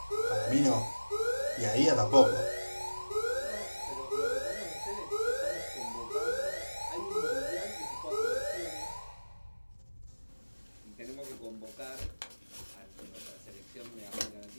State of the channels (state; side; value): inverted; both; correlation -1.00